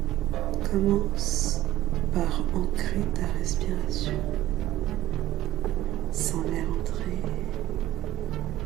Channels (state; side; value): quieter; left; 14.0 dB